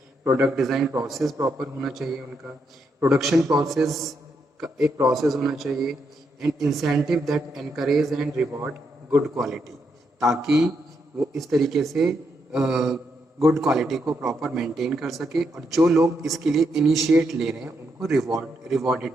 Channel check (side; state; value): both; normal; correlation 0.80